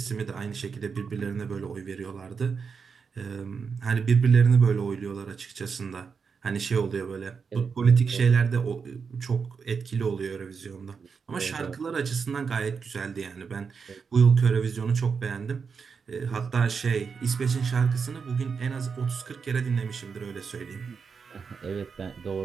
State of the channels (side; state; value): left; quieter; 5.7 dB